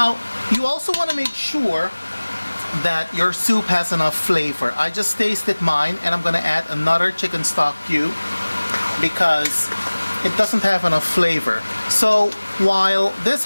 you also want to make sure that your soup has enough flavor. I just tasted mine, and I'm going to add another chicken stock cube because it doesn't have enough flavor. So while this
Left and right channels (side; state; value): both; inverted; correlation -1.00